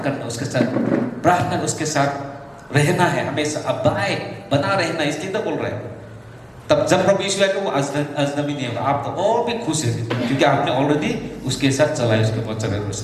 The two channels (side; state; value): both; identical; correlation 1.00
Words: करना, उसके साथ प्रार्थना, उसके साथ रहना है, हमेशा अबाय बना रहना, इसलिए तो बोल रहे हैं। तब जब प्रभु यीशु आएगा वो अजनबी नहीं होगा, आप तो और भी खुश है, क्योंकि आपने ऑलरेडी उसके साथ चला है, उसके वचन के